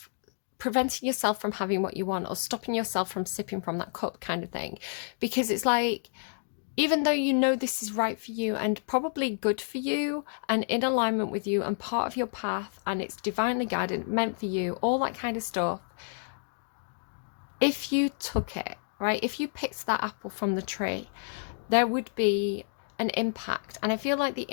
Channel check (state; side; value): silent; right; digital silence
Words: preventing yourself from having what you want, or stopping yourself from sipping from that cup kind of thing. Because it's like, even though you know this is right for you and probably good for you and in alignment with you and part of your path and it's divinely guided, meant for you, all that kind of stuff, if you took it, right, if you picked that apple from the tree, there would be an impact. And I feel like the